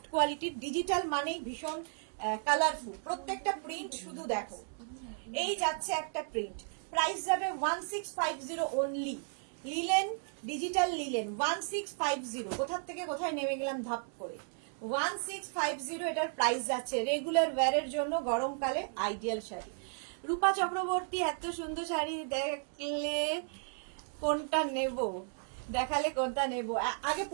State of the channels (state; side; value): silent; left; 55 dB below the other